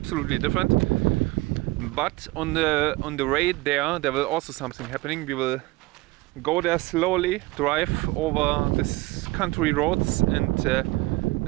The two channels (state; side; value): quieter; left; 20.8 dB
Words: different. But on the way there will also something happening. We will go there slowly, drive over this country roads, and